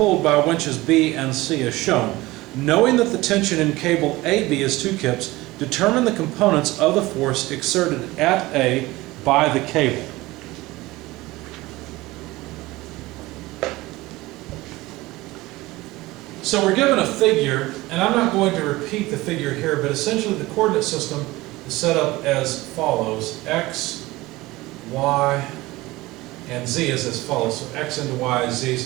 by winches B and C as shown. Knowing that the tension in cable AB is 2 kips, determine the components of the force exerted at A by the cable. So we're given a figure, and I'm not going to repeat the figure here, but essentially the coordinate system is set up as follows. X, Y, and Z is as follows. So X into Y is Z,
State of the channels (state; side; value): quieter; left; 19.7 dB